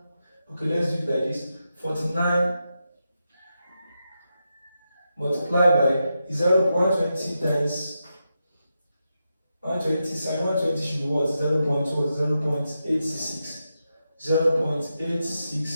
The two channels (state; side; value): inverted; both; correlation -0.87